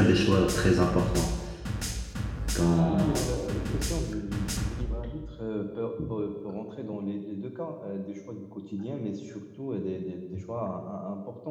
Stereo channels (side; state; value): both; identical; correlation 1.00